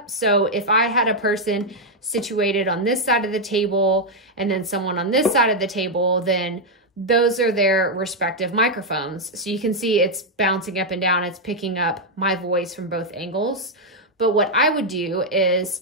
So if I had a person situated on this side of the table and then someone on this side of the table, then those are their respective microphones. So you can see it's bouncing up and down. It's picking up my voice from both angles. But what I would do is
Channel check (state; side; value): normal; both; correlation -0.01